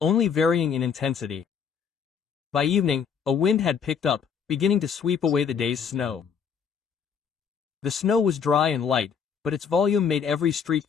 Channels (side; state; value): right; quieter; 6.8 dB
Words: varying in intensity. By evening, a wind had picked up, beginning to sweep away the day's snow. The snow was dry and light, but its volume made every street